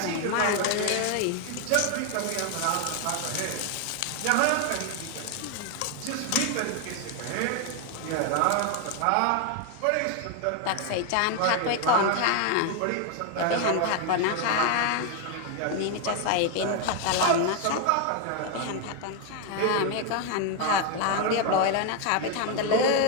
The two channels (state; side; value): different; both; correlation 0.01